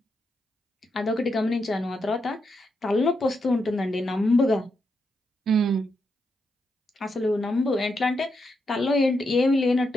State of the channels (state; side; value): normal; both; correlation 0.83